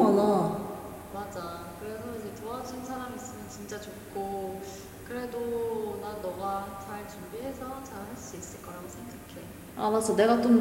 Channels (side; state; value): both; identical; correlation 1.00